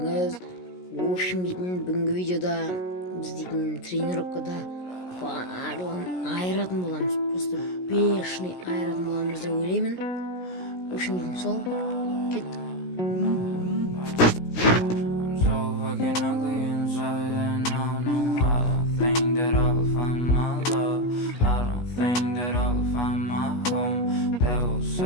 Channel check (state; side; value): late; right; 16 ms